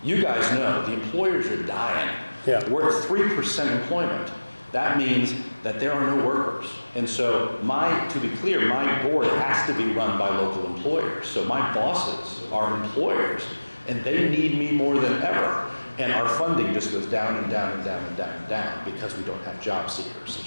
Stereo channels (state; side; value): inverted; both; correlation -1.00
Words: You guys know the employers are dying. Yeah. We're at 3% employment. That means that there are no workers. And so to be clear, my board has to be run by local employers. So my bosses are employers, and they need me more than ever. And our funding just goes down and down and down and down and down because we don't have job seekers. It's